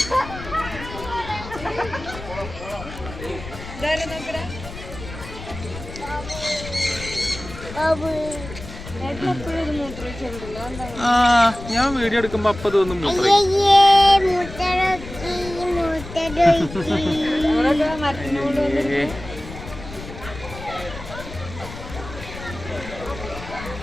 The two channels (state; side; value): noise; left; rumble, 12 dB below the sound